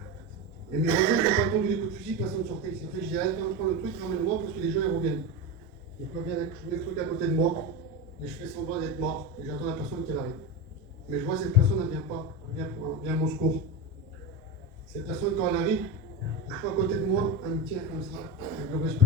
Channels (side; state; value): both; normal; correlation 0.19